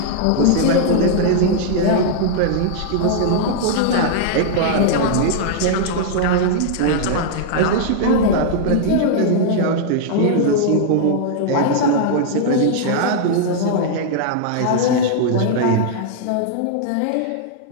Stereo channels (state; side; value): different; both; correlation -0.01